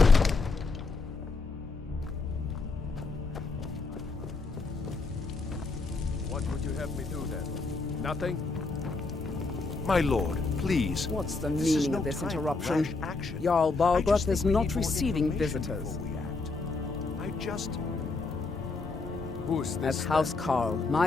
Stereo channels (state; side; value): quieter; right; 3.8 dB